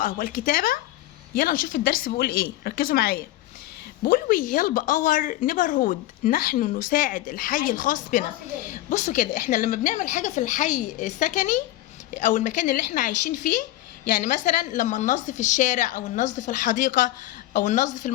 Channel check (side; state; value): right; quieter; 15.6 dB